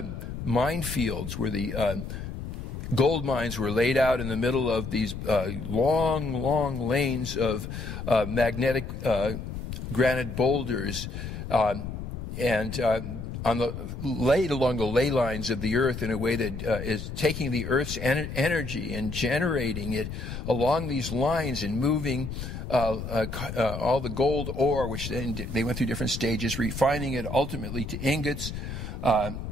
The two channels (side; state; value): left; noise; rumble, 7 dB below the sound